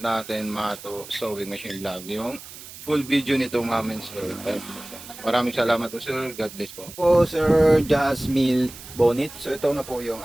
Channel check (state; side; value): noise; right; hiss, 15 dB below the sound